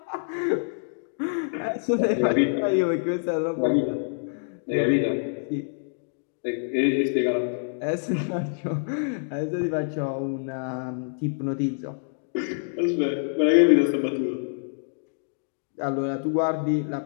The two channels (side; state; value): right; silent; digital silence